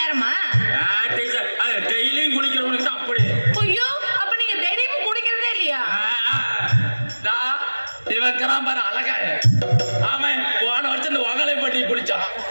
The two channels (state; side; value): inverted; both; correlation -1.00